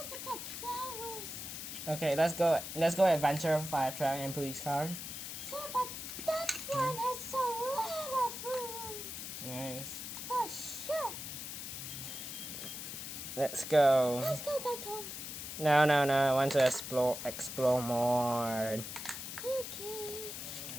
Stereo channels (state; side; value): noise; left; hiss, 7 dB below the sound